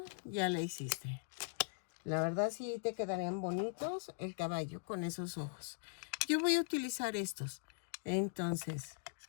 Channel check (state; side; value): silent; right; digital silence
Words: ya la hiciste. La verdad sí te quedarían bonitos el caballo con esos ojos. Yo voy a utilizar estos. Entonces,